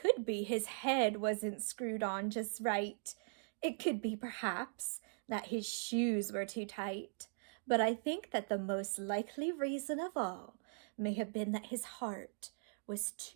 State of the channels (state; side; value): silent; left; digital silence